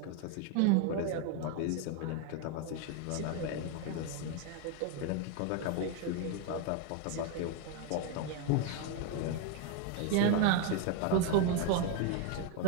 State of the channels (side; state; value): both; different; correlation 0.02